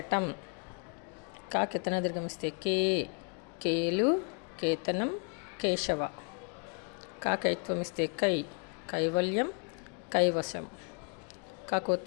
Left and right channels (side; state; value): right; quieter; 38.6 dB